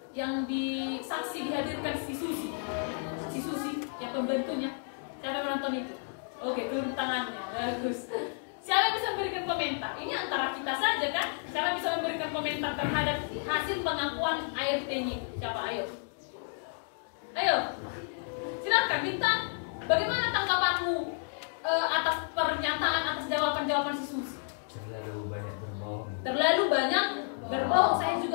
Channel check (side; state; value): right; silent; 57 dB below the other